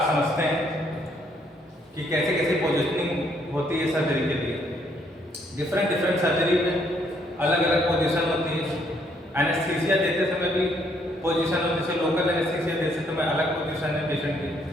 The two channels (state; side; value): normal; both; correlation 0.69